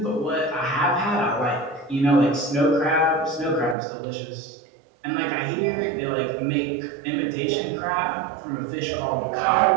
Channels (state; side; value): drops out; left; at 3.8 s